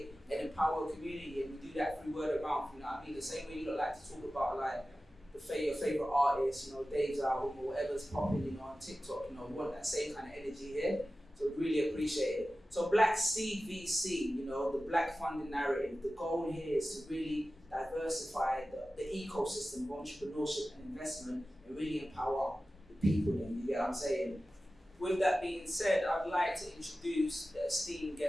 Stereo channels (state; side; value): normal; both; correlation 0.95